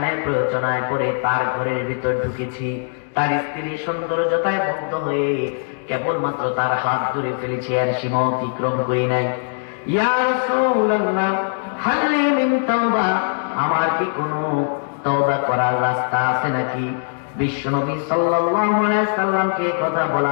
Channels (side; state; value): right; silent; digital silence